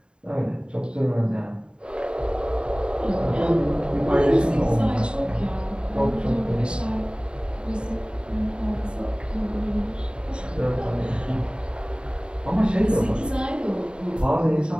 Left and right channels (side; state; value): left; late; 0.051 ms